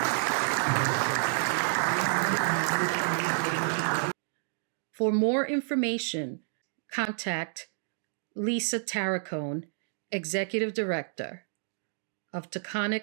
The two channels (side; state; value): left; silent; digital silence